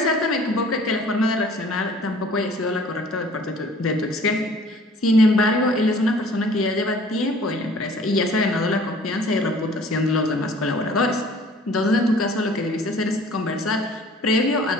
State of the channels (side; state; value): both; normal; correlation 0.51